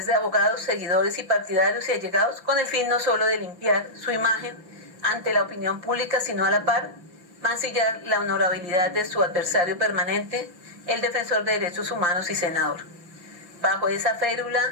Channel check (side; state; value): left; late; 5.9 ms